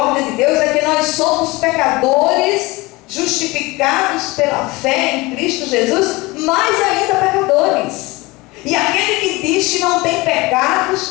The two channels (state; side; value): quieter; right; 22.5 dB